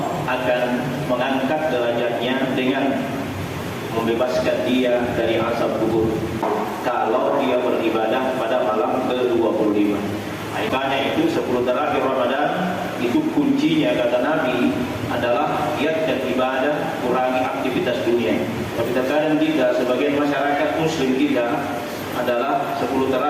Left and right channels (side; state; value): both; identical; correlation 1.00